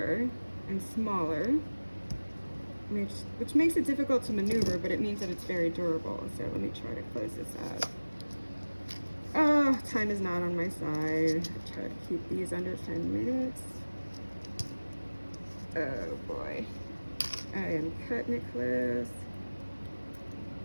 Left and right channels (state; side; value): inverted; both; correlation -1.00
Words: and smaller, which makes it difficult to maneuver, but it means that it's very durable. So let me try to close this up. Oh, time is not on my side. I try to keep these under 10 minutes. Oh boy. I am cutting it close.